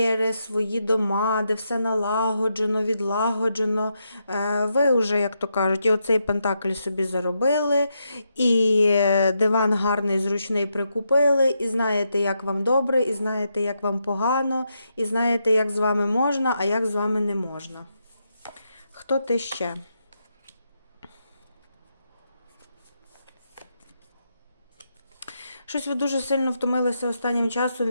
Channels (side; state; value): both; inverted; correlation -0.82